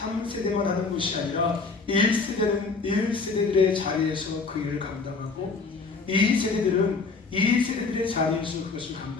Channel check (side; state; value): right; quieter; 4.3 dB